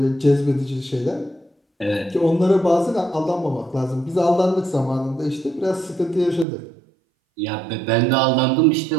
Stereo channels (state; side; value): drops out; left; at 6.5 s